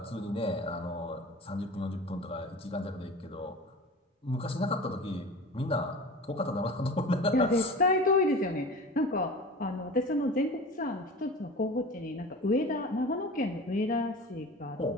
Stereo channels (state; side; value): normal; both; correlation 0.36